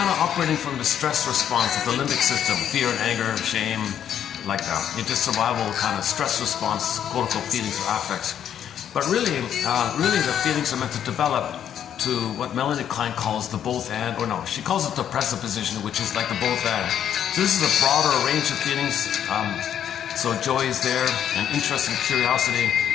of operating from the stress response of the limbic system, fear and anger, shame, like that. It's just survival kind of stress response, quote-unquote feelings or affects. But really the feelings are meant to develop to what Melanie Klein calls the both and, or no, she calls it the presupposition, which is like the both and. So this is a broader range of feelings. So joy is there, and interest and curiosity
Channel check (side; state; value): right; quieter; 9.6 dB